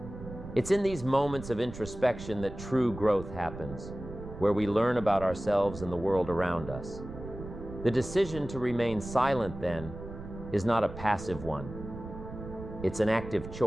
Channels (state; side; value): noise; right; rumble, 11 dB below the sound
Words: It's in these moments of introspection that true growth happens, where we learn about ourselves and the world around us. The decision to remain silent, then, is not a passive one. It's an active